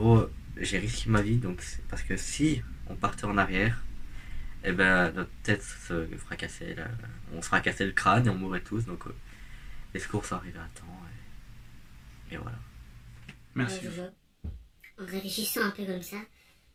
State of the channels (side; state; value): both; identical; correlation 1.00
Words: j'ai risqué ma vie parce que si on partait en arrière, et ben notre tête se fracassait, on se fracassait le crâne et on mourrait tous. Donc les secours sont arrivés à temps et voilà. Merci. Jojo, en réfléchissant un peu comme ça,